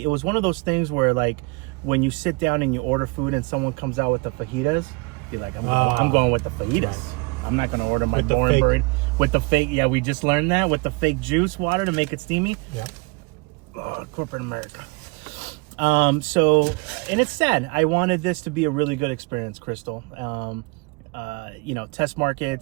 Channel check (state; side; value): quieter; left; 27.8 dB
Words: it was one of those things where, like, when you sit down and you order food and someone comes out with the fajitas, you're like, I'm going with the fajitas. Right. I'm not gonna order my boring burrito with the fake. Yeah, we just learned that with the fake juice water to make it steamy. Yeah. Oh, corporate America. So, and it's sad. I wanted this to be a really good experience, Krystal. You know, test